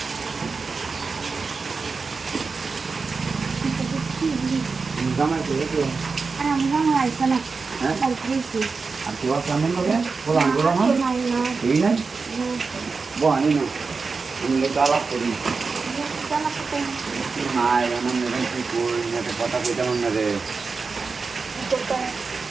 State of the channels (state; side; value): quieter; left; 4.6 dB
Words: জামাই করে আর কেউ সামনে লোকে বলান করো না এই নাই বহানি না আমি লোক আলাপ করি নাই আমার মেয়ে কি কই না কথা কইতে মনে রে